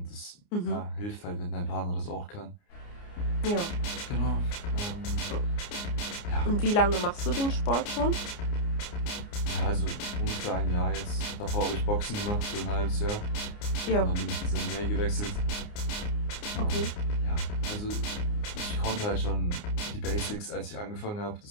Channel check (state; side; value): late; right; 29 ms